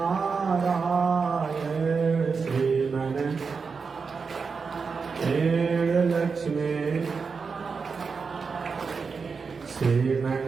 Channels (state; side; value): quieter; left; 5.2 dB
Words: श्रीमन लक्ष्मी श्रीमन